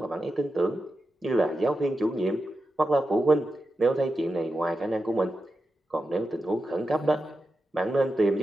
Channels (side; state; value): both; normal; correlation 0.89